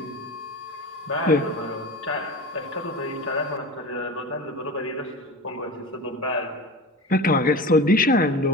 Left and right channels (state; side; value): normal; both; correlation 0.31